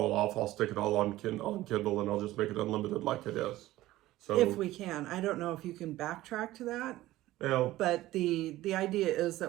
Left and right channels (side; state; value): left; quieter; 16.2 dB